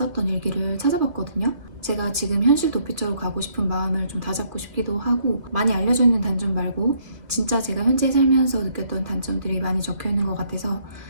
일기를 찾아봤거든요. 제가 지금 현실 도피처로 가고 싶은 마음을 좀 다잡고 싶기도 하고, 많이 알려져 있는 단점 말고 진짜 제가 현재 살면서 느꼈던 단점들이 많이 적혀 있는 것 같아서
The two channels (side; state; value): left; late; 2.5 ms